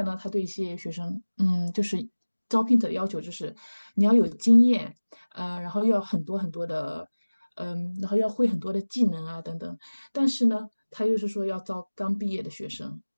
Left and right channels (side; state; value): both; inverted; correlation -1.00